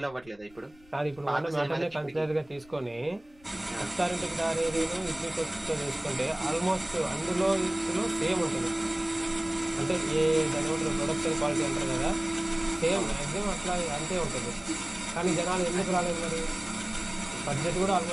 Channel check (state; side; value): noise; left; rumble, 27 dB below the sound